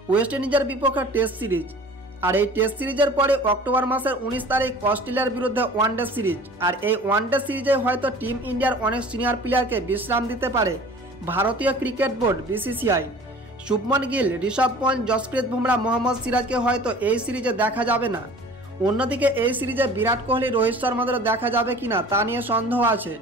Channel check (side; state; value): both; normal; correlation 0.45